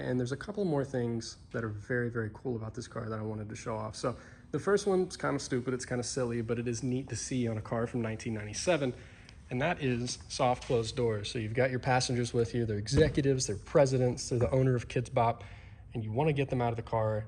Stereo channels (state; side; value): identical; both; correlation 1.00